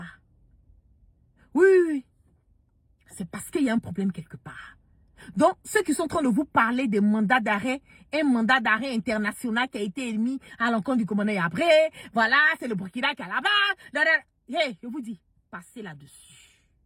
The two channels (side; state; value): both; identical; correlation 1.00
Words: Oui. C'est parce qu'il y a un problème quelque part. Donc, ceux qui sont en train de vous parler des mandats d'arrêt, un mandat d'arrêt international qui a été émis à l'encontre du commandant Yapré, voilà, c'est le Burkina qui est là-bas. Hey, je vous dis, passez là-dessus.